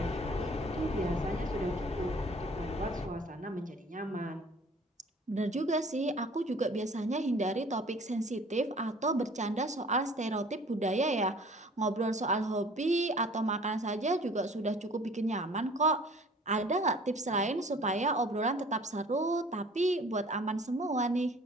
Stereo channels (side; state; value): both; normal; correlation 0.50